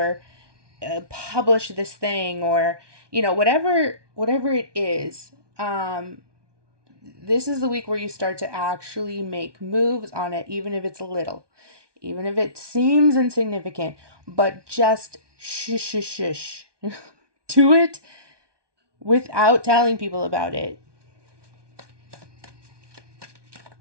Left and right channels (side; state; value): left; late; 1.2 ms